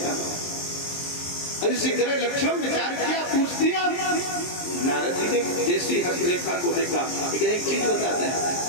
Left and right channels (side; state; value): right; late; 23 ms